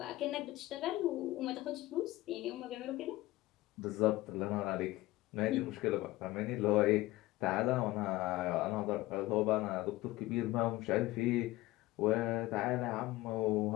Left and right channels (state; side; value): quieter; right; 18.4 dB